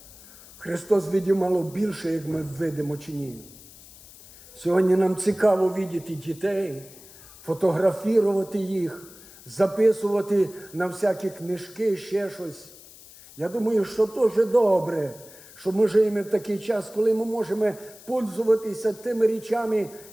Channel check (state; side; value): noise; left; hiss, 20 dB below the sound